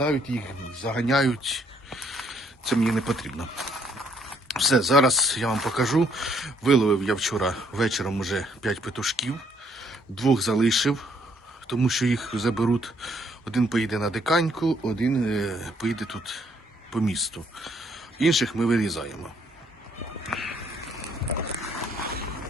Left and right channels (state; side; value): normal; both; correlation 0.68